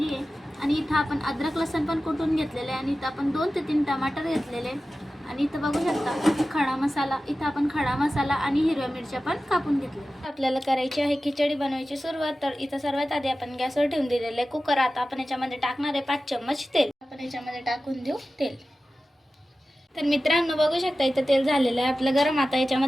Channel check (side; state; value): both; normal; correlation 0.95